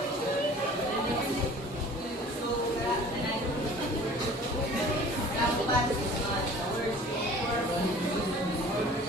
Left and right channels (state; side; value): normal; both; correlation 0.47